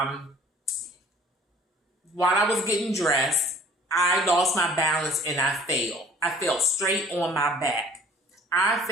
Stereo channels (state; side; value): normal; both; correlation 0.51